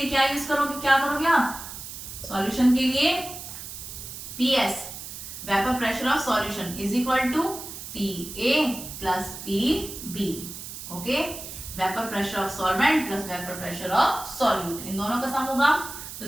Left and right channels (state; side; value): noise; right; hiss, 10 dB below the sound